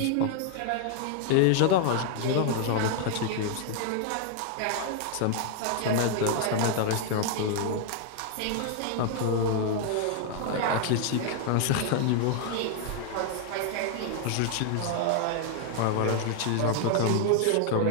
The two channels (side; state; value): both; different; correlation 0.00